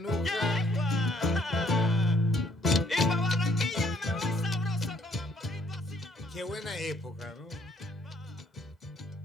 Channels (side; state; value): both; normal; correlation 0.65